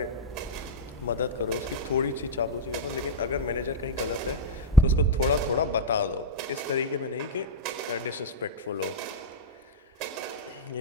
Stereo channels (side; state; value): both; normal; correlation -0.01